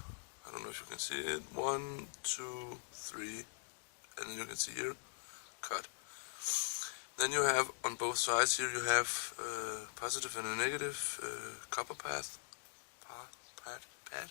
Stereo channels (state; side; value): silent; right; digital silence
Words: I don't know if you can see it, 1, 2, 3, and then you can see here, cut. Then you have on both sides here, you have positive and a negative copper path.